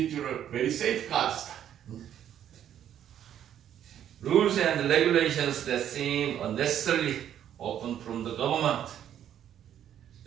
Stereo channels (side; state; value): left; quieter; 10.3 dB